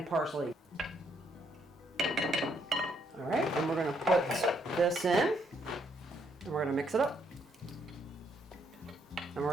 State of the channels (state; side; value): normal; both; correlation 0.72